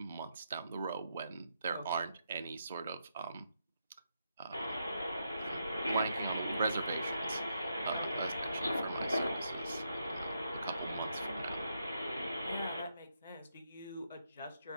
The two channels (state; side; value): inverted; both; correlation -0.81